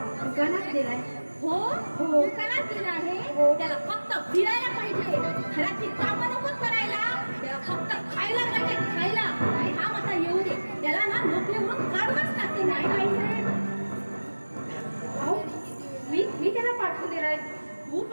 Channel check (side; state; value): both; inverted; correlation -1.00